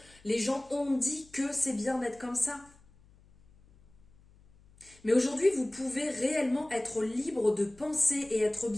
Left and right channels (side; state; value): left; noise; hum, 27 dB below the sound